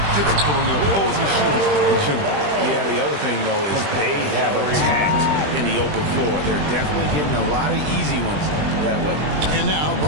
difficult on the opposing shooters in general. Yeah, the other thing, though, is they have attacked in the open floor. They're definitely getting a lot of easy ones that way. And now,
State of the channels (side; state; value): left; late; 20 ms